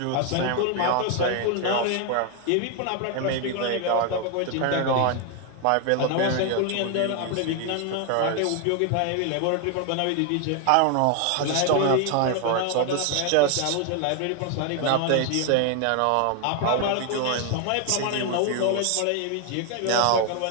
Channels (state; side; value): different; both; correlation 0.01